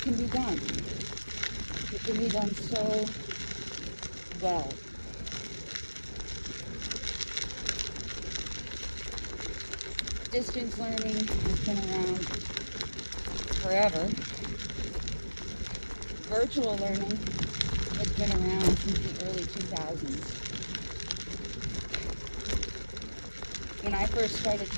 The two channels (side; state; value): both; inverted; correlation -1.00